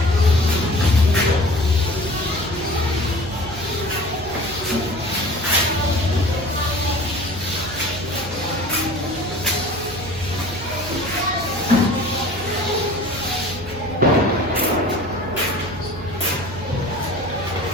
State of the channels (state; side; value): noise; right; hum, 14 dB below the sound